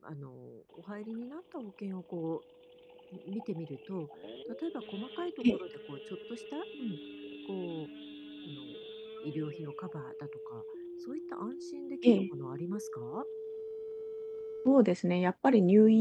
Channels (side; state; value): both; identical; correlation 1.00